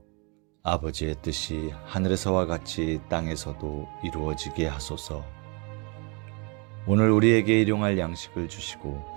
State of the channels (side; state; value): left; quieter; 32.3 dB